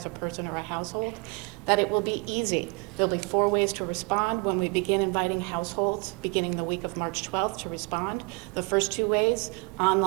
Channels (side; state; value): left; quieter; 29.1 dB